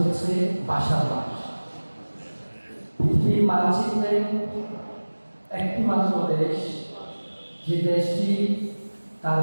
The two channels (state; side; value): inverted; both; correlation -1.00